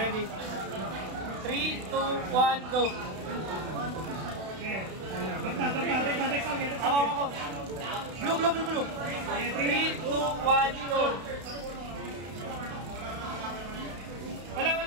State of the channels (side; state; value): left; late; 32 ms